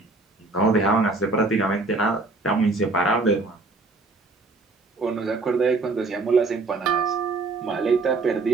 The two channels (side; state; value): left; quieter; 3.5 dB